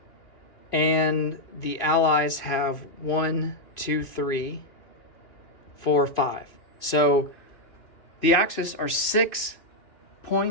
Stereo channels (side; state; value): right; late; 2.6 ms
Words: And the Allies have 1, 2, 3, 4, 5. So the Axis are 6